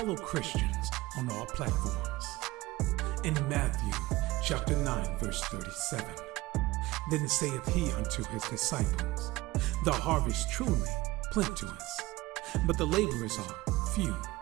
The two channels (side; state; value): left; quieter; 19.4 dB